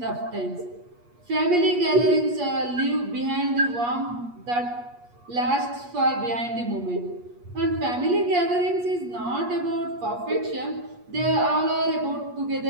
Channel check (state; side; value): late; left; 8.4 ms